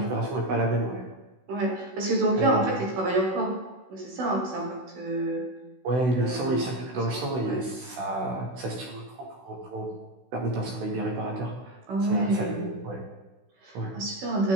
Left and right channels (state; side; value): late; left; 16 ms